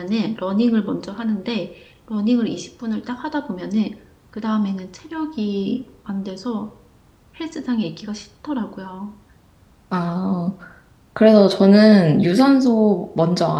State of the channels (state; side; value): identical; both; correlation 1.00